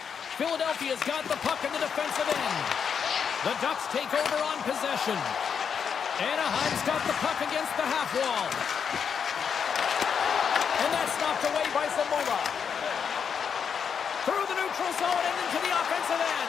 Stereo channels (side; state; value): right; quieter; 7.0 dB